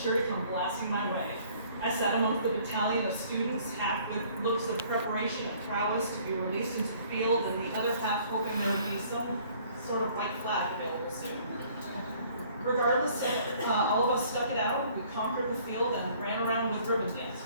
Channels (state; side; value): inverted; both; correlation -0.57